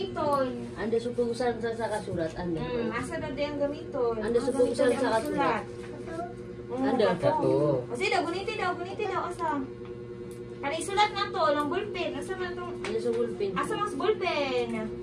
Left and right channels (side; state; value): both; identical; correlation 1.00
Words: Anda supusan sa kasulat. Anda. Asa na di ang gamiton. Anda supusan sa kasulat. Anda. Kato. O sige daw, guniti daw. Asa. Kani isulat na to. Lang ballpen. Asa man itong... Anda sa bulpin. Asa mas ballpen?